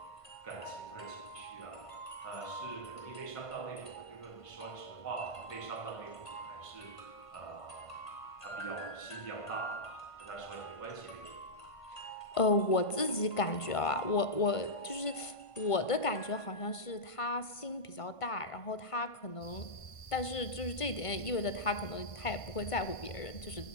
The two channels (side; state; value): right; late; 1.5 ms